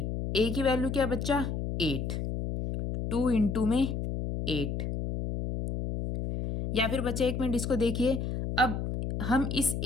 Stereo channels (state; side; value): noise; left; hum, 3 dB below the sound